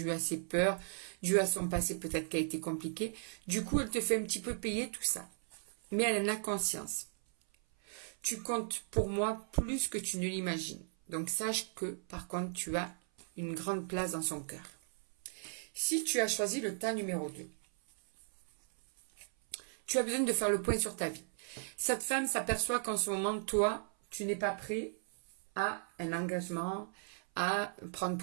à ses peurs, dû à son passé peut-être qui a été compliqué. Du coup, elle te fait un petit peu payer tout ça. Mais elle en a conscience. Tu comptes pour moi plus que tu ne l'imagines. Donc sache que, par contre, tu as une grande place dans son cœur. Si tu as choisi le tas numéro 2, tu as besoin de faire le point sur ta vie. Cette femme s'aperçoit qu'en ce moment, toi, tu n'es pas prêt à un engagement, à prendre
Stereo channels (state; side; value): silent; left; 54 dB below the other